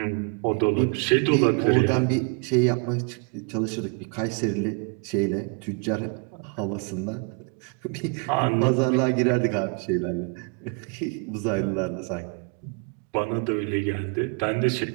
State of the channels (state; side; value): quieter; left; 35.3 dB